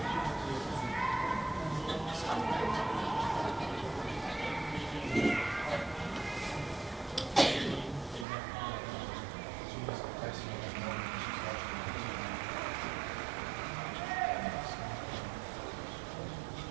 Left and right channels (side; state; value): left; drops out; at 8.2 s